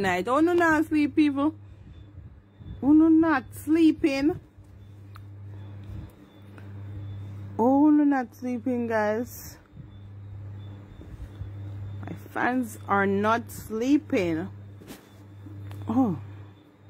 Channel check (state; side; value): identical; both; correlation 1.00